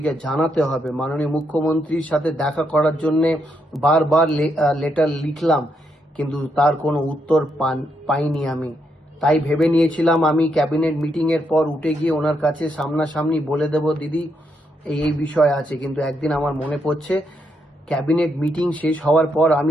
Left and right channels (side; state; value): both; normal; correlation 0.79